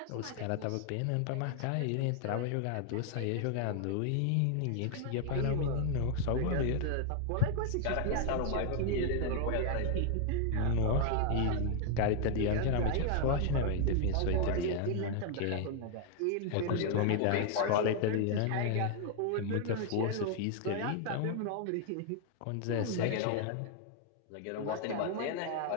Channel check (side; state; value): both; different; correlation 0.00